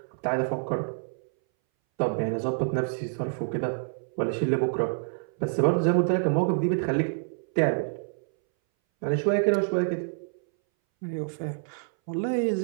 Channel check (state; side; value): silent; left; 60 dB below the other